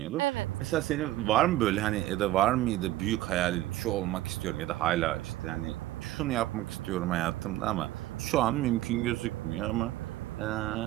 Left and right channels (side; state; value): left; quieter; 15.6 dB